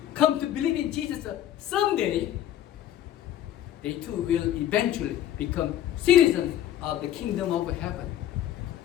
come to believe in Jesus someday, they too will eventually become citizens of the kingdom of heaven.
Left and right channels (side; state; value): right; quieter; 11.7 dB